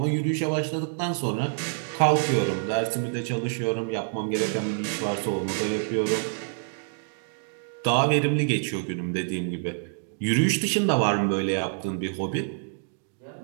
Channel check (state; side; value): silent; left; digital silence